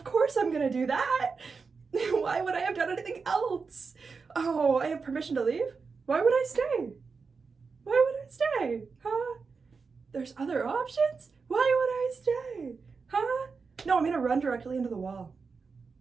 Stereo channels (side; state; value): left; quieter; 4.9 dB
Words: course I'm gonna do that. Why would I have done anything else? Oh, I have permission to leave? Why would I stay? Why would I stay? Huh? There's other options? Why would I stay? Huh? No, I'm gonna run directly into the wall.